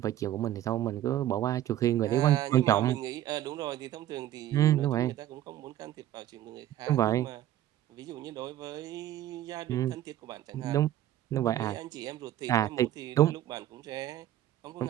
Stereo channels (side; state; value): left; quieter; 12.7 dB